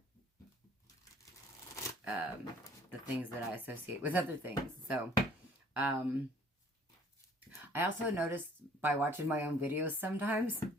the things that I associate with other things. So, I also noticed by watching my own videos sometimes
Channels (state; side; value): normal; both; correlation 0.55